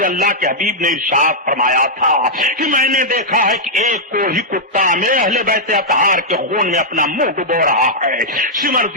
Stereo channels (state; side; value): normal; both; correlation -0.07